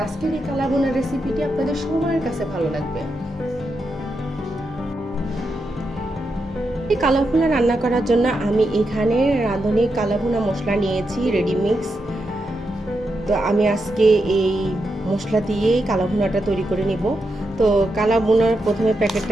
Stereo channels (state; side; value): normal; both; correlation 0.85